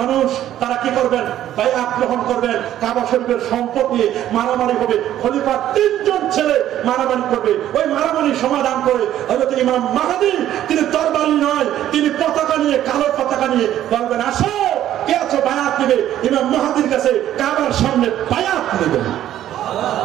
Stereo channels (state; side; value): quieter; left; 12.1 dB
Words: মানুষ, তারা কি করবেন? বায়াত গ্রহণ করবেন। কাবা শরীফের সম্পদ নিয়ে মারামারি হবে। খলিফার 3 জন ছেলে মারামারি করবে। ওই মারামারি সমাধান করে হযরত ইমাম মাহদী, তিনি তরবারি নয়, তিনি পতাকা নিয়ে, কালো পতাকা নিয়ে বলবেন, আসো কে আছো বায়াত নেবে। ইমাম মাহদীর কাছে কাবার সামনে বায়াত নেবেন।